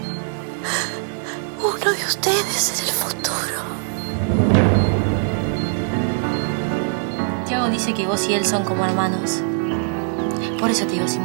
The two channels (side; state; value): left; silent; digital silence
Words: uno de ustedes en el futuro. Tiago dice que vos y él son como hermanos. Por eso te digo,